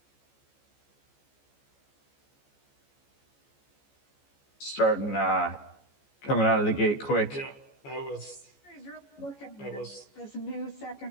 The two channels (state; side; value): late; right; 14 ms